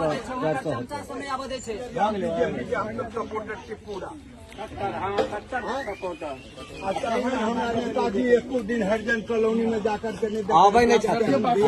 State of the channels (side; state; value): both; identical; correlation 1.00